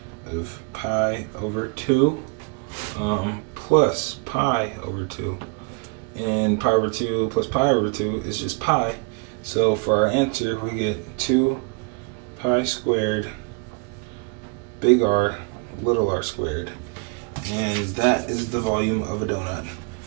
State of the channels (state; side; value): quieter; left; 32.3 dB